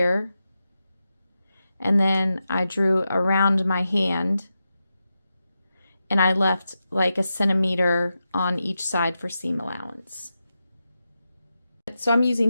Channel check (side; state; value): both; inverted; correlation -0.90